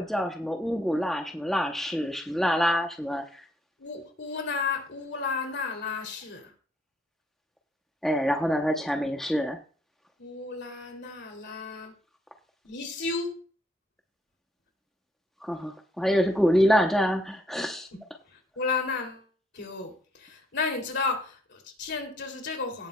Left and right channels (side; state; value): both; normal; correlation 0.70